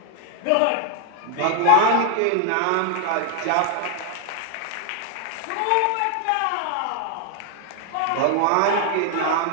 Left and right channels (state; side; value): different; both; correlation 0.01